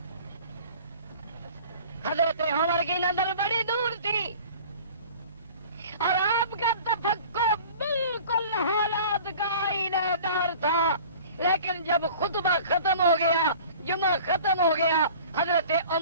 حضرت عمر کی نظر بڑی دور تھی اور آپ کا تفکر بالکل حالات کا آئینہ دار تھا، لیکن جب خطبہ ختم ہو گیا، جمعہ ختم ہو گیا، حضرت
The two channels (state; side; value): inverted; both; correlation -0.44